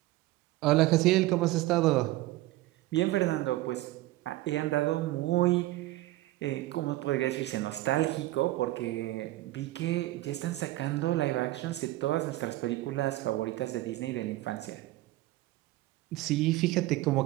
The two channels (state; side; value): quieter; left; 17.3 dB